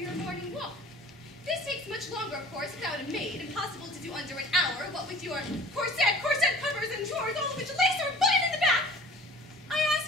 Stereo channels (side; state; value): both; normal; correlation 0.46